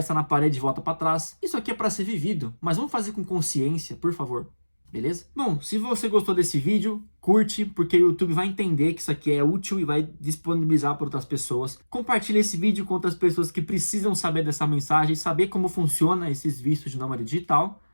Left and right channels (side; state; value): both; inverted; correlation -1.00